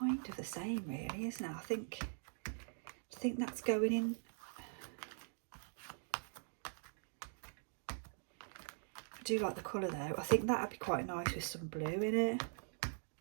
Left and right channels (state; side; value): silent; left; digital silence